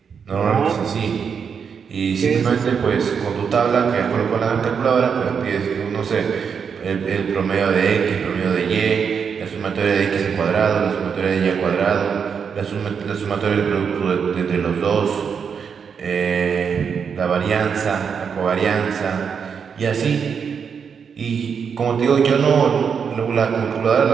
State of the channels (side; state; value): left; quieter; 6.6 dB